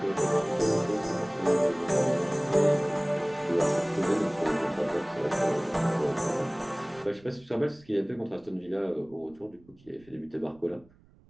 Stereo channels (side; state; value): right; noise; rumble, 28 dB below the sound